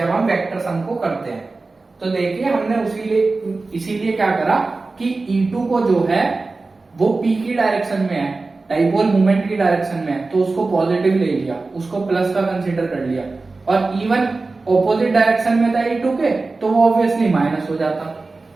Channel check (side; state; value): left; quieter; 3.6 dB